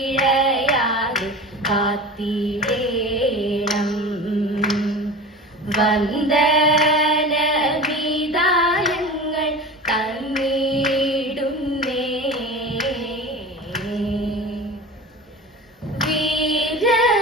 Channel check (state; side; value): normal; both; correlation 0.34